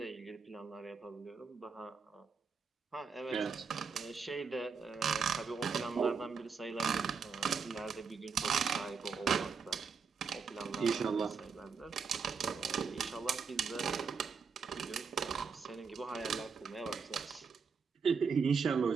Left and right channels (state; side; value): quieter; left; 5.6 dB